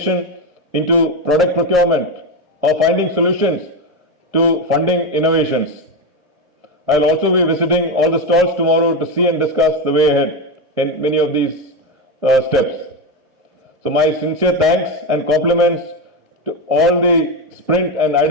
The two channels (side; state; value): both; normal; correlation 0.12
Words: into product procurement, or finding solutions to funding innovations. I'll also be visiting all the stalls tomorrow to see and discuss the way ahead in many of these steps. So my sincere thanks and compliments to all the Sprint and